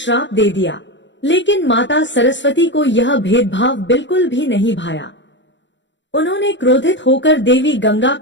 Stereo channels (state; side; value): late; right; 0.53 ms